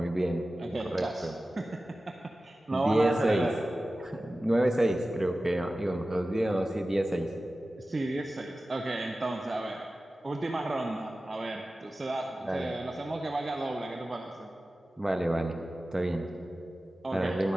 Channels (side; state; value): both; normal; correlation 0.95